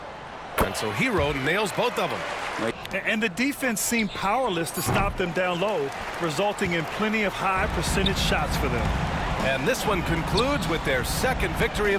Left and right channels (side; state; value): both; identical; correlation 1.00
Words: And so Hero nails both of them. And the defense seemed powerless to stop them down low, resulting in plenty of high percentage shots for them. And this one concludes with their second victory